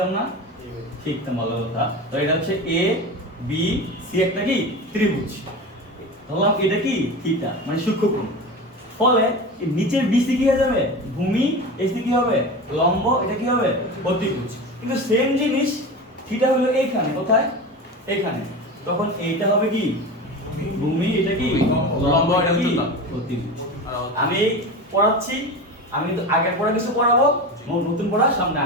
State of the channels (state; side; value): normal; both; correlation 0.28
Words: না? শিখতাম, ভালো কথা। তো এটা হচ্ছে এ বি সি একটা কি ত্রিভুজ, ধরলাম এটা কি থিটা, মানে সূক্ষ্মকোণ। ফলে এই নিচের বিসি কি হয়ে যাবে? ভূমি। এসি কি হবে? লম্ব। এটা কি হবে? অতিভুজ। কিন্তু সেম জিনিস থিটা হলো এইখানে, কোথায়? এইখানে। তখন এইটা হবে কি ভূমি, এটা কি লম্ব, এটা কি অতিভুজ। আমি পড়াচ্ছি, আমি কিন্তু আগের পড়া কিছু পড়াবো, নতুন পড়া সামনে